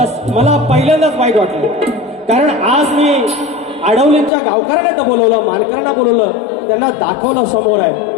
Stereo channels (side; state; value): right; drops out; at 4.3 s